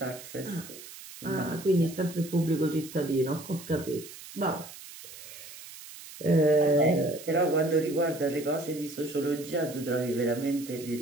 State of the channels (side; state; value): right; noise; hiss, 15 dB below the sound